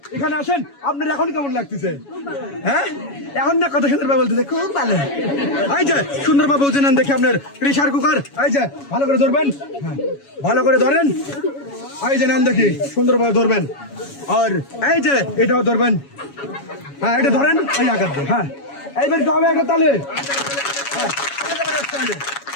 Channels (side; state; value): right; late; 7.2 ms